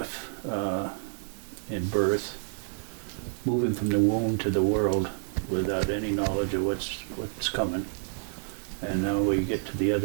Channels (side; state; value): left; silent; digital silence